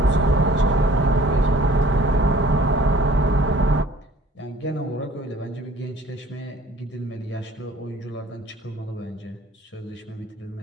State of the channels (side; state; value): both; normal; correlation 0.53